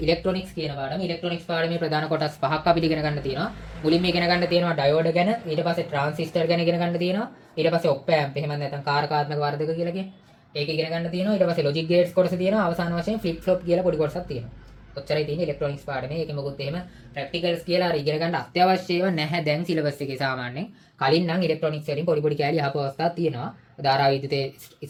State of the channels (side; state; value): both; identical; correlation 1.00